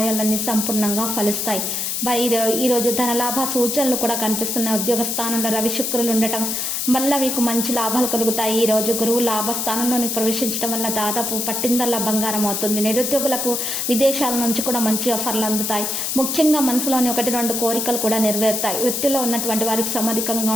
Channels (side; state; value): left; noise; hiss, 1 dB below the sound